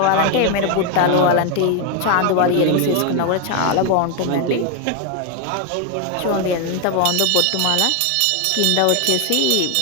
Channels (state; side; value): different; both; correlation 0.01